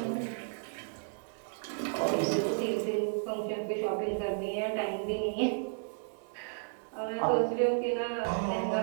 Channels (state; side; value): silent; left; 56 dB below the other